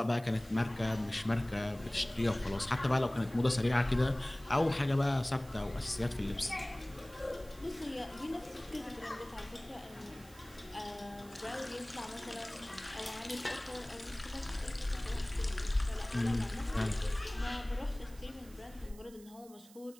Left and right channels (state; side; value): noise; right; hiss, 22 dB below the sound